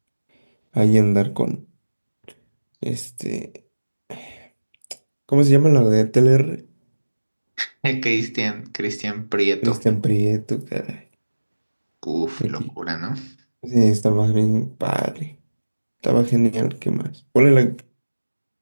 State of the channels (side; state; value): both; inverted; correlation -1.00